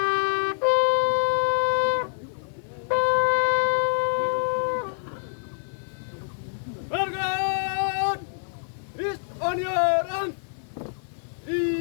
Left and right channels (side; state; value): right; silent; digital silence